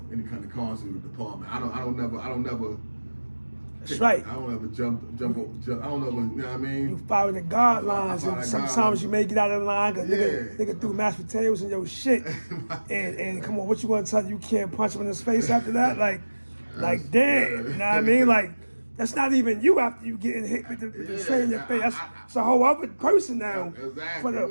any kind of consequence with the department. I don't never That's right. I don't ever jump. I don't know, you know what I mean? You follow the guidelines, follow and the sometimes guidelines. you may get out of line because Yeah. nigga threw mashed potatoes in your shit. and come on, what you gonna tell you can't punch him in his face after that? Like damn, you know what I mean? Like that's not even you after you getting hit with the tray in your face. That's a whole other person now. Exactly.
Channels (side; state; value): both; inverted; correlation -1.00